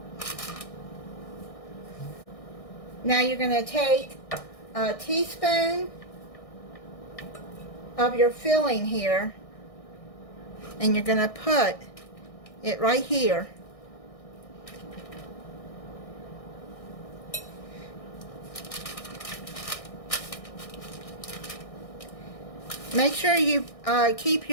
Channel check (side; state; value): right; late; 1.6 ms